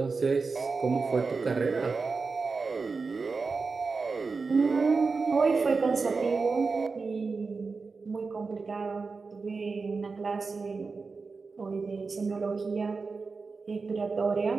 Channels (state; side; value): quieter; left; 4.4 dB